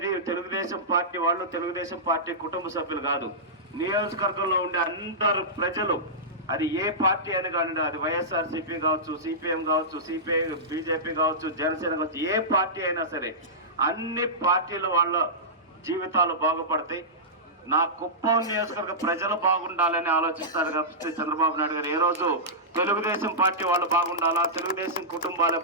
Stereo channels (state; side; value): normal; both; correlation -0.15